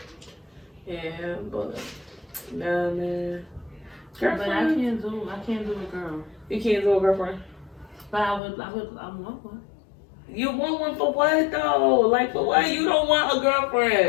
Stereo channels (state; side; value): drops out; right; at 8.4 s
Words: Yeah, but nah, man. Girlfriend. But I can't do a girl. You can't do a girlfriend. But I want one. You want one for what though? Like for what? You don't want a